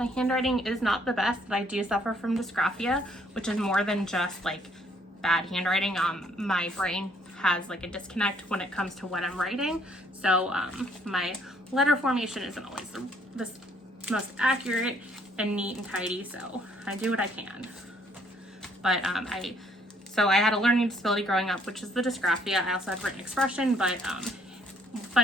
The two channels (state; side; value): normal; both; correlation 0.65